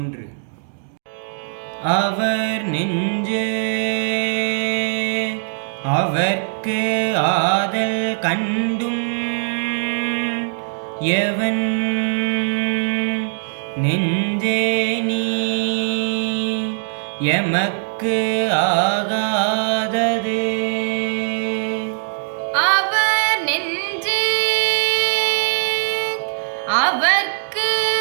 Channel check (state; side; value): silent; left; digital silence